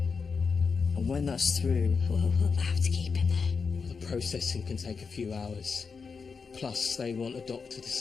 and when that's through... We'll have to keep him there. The processing can take a few hours. Plus, they want a doctor to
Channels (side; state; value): right; quieter; 5.3 dB